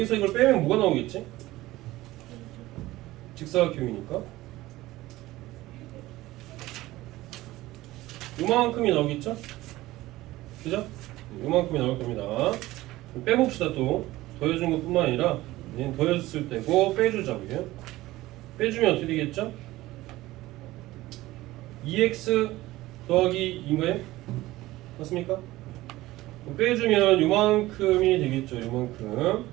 이걸 빼면 뭐가 나오겠지? 직사각형이니까 요만큼이 나오겠죠? 그죠? 요만큼이 나올 겁니다. 빼봅시다. 또 더해준 것 뿐만 아니라 얘는 더해줬을 때고 빼주자고요. 빼주면 어떻게 되겠죠? 2x 더하기 2인가요? 맞습니까? 빼주면 요만큼이 되겠죠. 요만큼.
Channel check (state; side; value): quieter; left; 17.5 dB